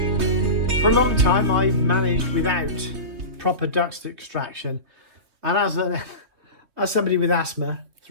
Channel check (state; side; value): late; left; 2.9 ms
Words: For a long time I've managed without proper dust extraction, and as somebody with asthma, it's